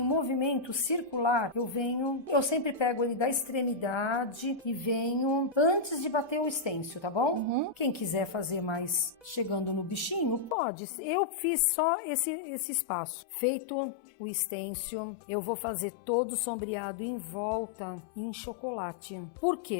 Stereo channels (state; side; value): drops out; right; at 10.6 s